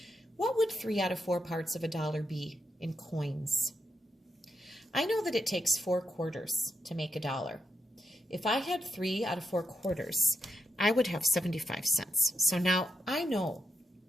What would 3 out of 4 parts of a dollar be in coins? I know that it takes 4 quarters to make a dollar. If I had 3 out of 4 quarters, I would have 75 cents. So now I know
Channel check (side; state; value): both; normal; correlation 0.84